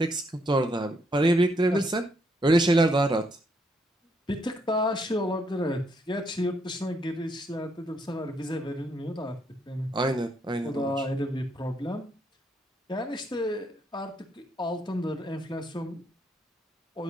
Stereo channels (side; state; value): both; normal; correlation 0.74